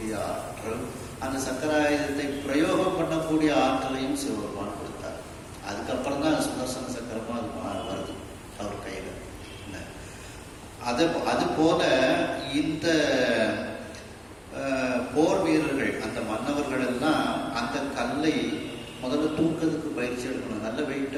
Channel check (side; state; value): both; identical; correlation 1.00